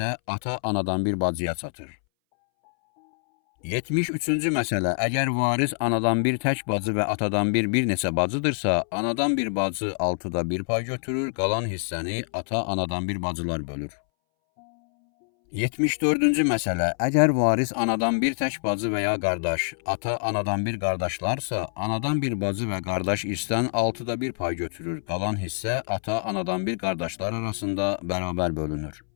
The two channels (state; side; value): silent; right; 61 dB below the other